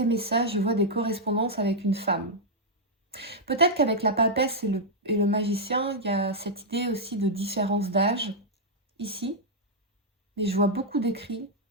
messages, je vois des correspondances avec une femme. Peut-être qu'avec la papesse et le magicien, il y a cette idée aussi de différence d'âge, ici. Mais je vois beaucoup d'écrits,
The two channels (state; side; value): normal; both; correlation -0.05